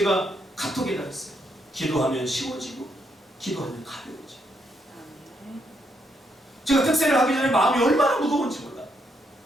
카톡에 달았어요. 기도하면 쉬워지고 기도하면 가벼워지고. 제가 특세를 하기 전에 마음이 얼마나 무거운지 몰라요.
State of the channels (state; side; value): normal; both; correlation 0.77